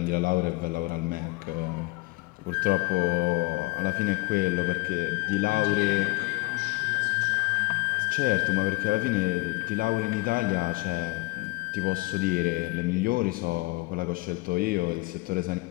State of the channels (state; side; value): quieter; right; 23.6 dB